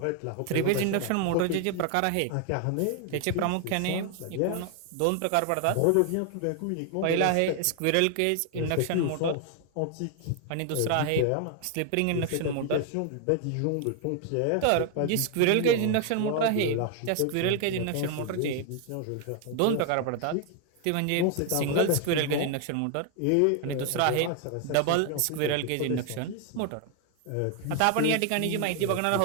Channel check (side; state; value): both; different; correlation 0.01